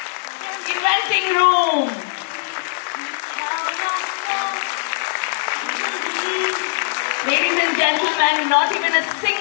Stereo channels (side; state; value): right; silent; 65 dB below the other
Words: Inventing room. Ladies and gentlemen, not even a